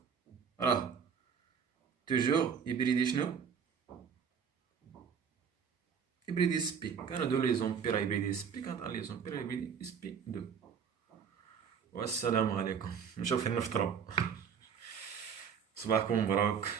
راه توجور هيبريدي شنو؟ هيبريدي سبي. كانوا دو ليزون بي راه هيبريدي سبي، كانت ان ليزون بي راه هيبريدي سبي 2. والسلام عليكم. نشوف فين نفطرو. صباحكم مبروك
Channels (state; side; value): quieter; left; 7.0 dB